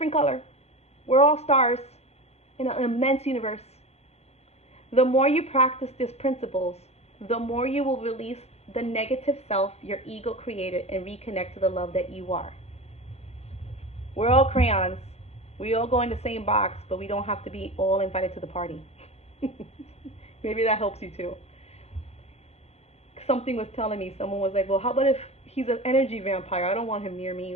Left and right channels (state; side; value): late; right; 0.31 ms